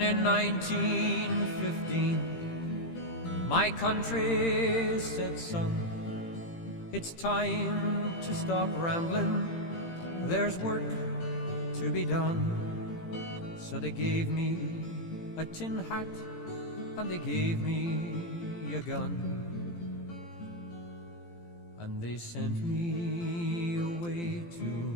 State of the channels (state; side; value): late; right; 18 ms